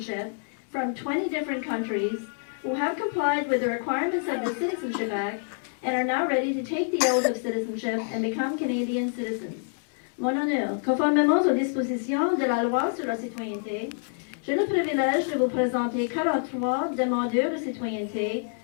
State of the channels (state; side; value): silent; right; 60 dB below the other